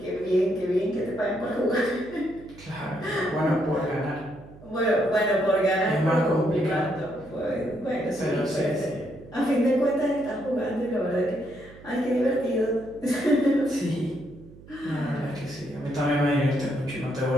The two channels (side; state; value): right; noise; hum, 20 dB below the sound